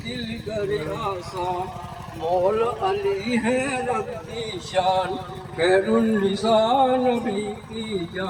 کر آسان مول علی ہے رب کی شان خیر النساء نبی کی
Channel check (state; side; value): identical; both; correlation 1.00